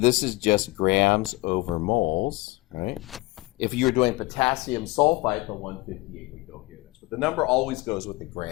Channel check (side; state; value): right; quieter; 21.3 dB